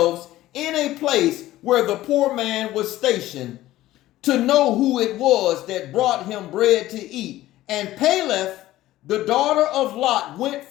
in a place where the poor man was stationed, to know who it was that brought him bread to eat. And Peleth, the daughter of Lot, went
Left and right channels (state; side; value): quieter; right; 15.5 dB